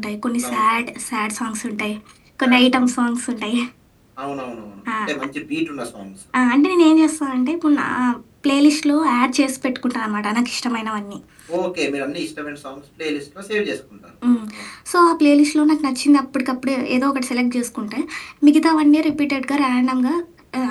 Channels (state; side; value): identical; both; correlation 1.00